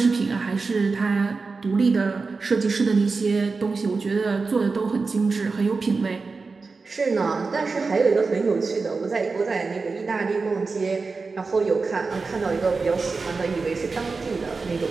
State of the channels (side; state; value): left; quieter; 4.3 dB